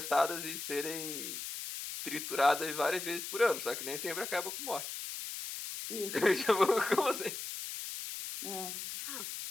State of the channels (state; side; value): noise; left; hiss, 6 dB below the sound